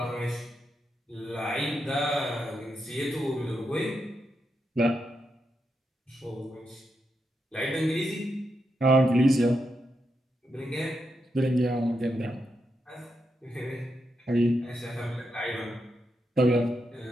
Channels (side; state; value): both; normal; correlation 0.84